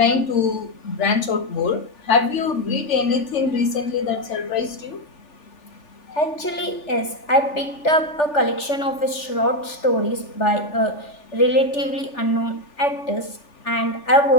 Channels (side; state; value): right; late; 3.4 ms